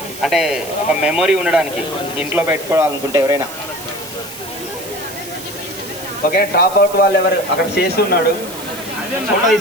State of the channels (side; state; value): right; noise; hiss, 13 dB below the sound